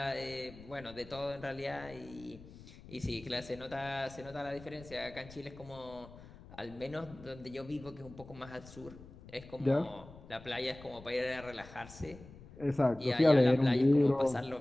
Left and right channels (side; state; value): left; noise; rumble, 18 dB below the sound